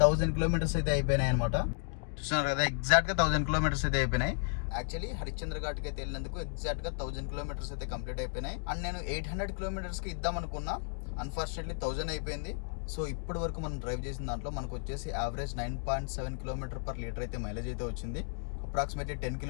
కిలోమీటర్స్ అయితే అయిపోయినాయి అనమాట. చూస్తున్నారు కదా, ఎగ్జాక్ట్గా 1000 కిలోమీటర్స్ అయితే అయిపోయినాయి. యాక్చువల్లీ హరిశ్చంద్ర ఘాట్కి అయితే వెళ్ళినందుకు ఎగ్జాక్ట్గా 1000 కిలోమీటర్స్ అయితే కంప్లీట్ అయిపోయినాయి. అండ్ నేను 800 కిలోమీటర్స్కి ఇద్దాం అనుకున్నా. అన్ఫార్చునేట్లీ 1000 అయిపోయింది. సో ఇప్పటి వరకు మనం డ్రైవ్ చేసిన దాంట్లో మనకు వచ్చేసి యావరేజ్ 9.7 కిలోమీటర్ పర్ లీటర్ అయితే మైలేజ్ అయితే వచ్చింది. అప్రాక్సిమేట్లీ 10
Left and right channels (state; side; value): silent; right; 55 dB below the other